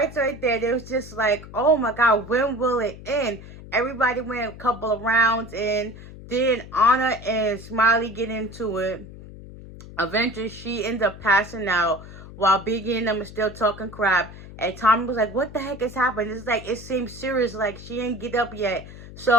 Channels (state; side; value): noise; left; hum, 15 dB below the sound